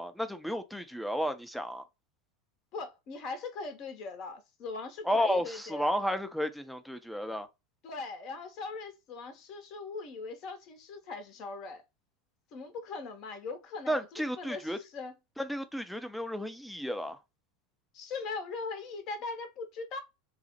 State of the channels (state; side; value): normal; both; correlation 0.77